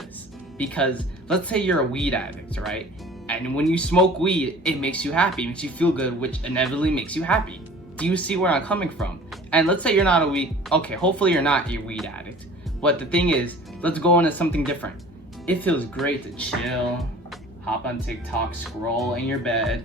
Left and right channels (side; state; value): both; normal; correlation 0.46